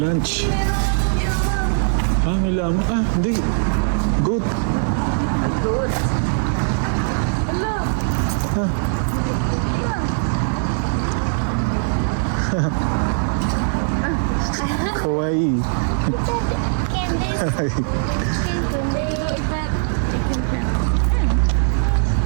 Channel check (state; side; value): silent; left; digital silence